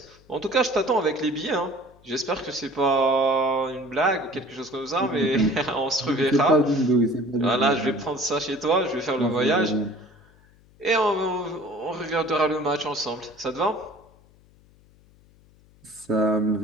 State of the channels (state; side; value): noise; left; hum, 29 dB below the sound